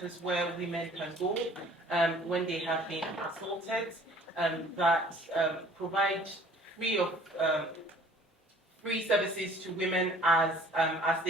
where women can go when they have been assaulted, that provide free services to women as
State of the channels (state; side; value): normal; both; correlation 0.52